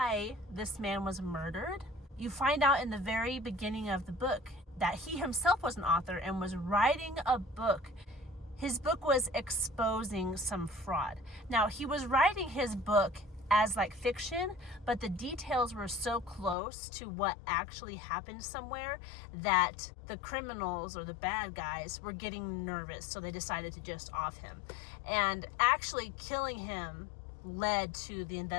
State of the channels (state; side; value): drops out; right; at 16.6 s